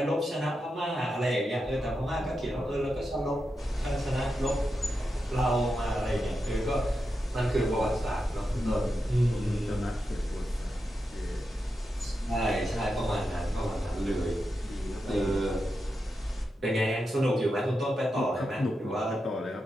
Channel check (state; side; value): normal; both; correlation 0.88